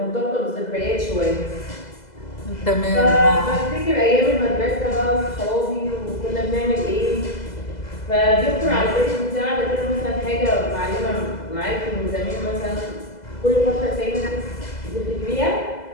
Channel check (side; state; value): right; late; 2.0 ms